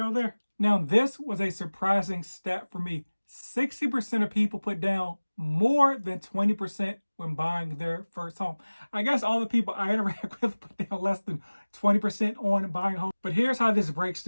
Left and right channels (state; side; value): inverted; both; correlation -1.00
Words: there. Now, this was a surprising stat for me. 60% of people put down more than 20% when buying their first home. I guess all the people I interact with put down less than 20% on buying a home. But here's how this breaks